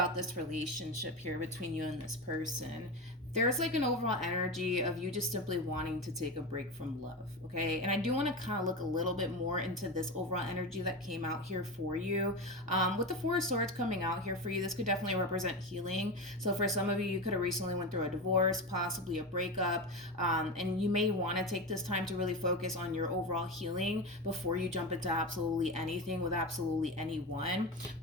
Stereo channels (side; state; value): both; normal; correlation 0.21